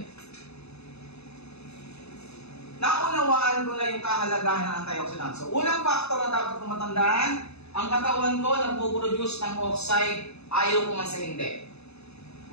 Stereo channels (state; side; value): late; right; 0.80 ms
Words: Naunawaan ko na yung kahalagahan ng antioxidants. So, unang factor na dapat kong matandaan, ang katawan ko nagpo-produce ng oxide, ayaw ko man sa hindi.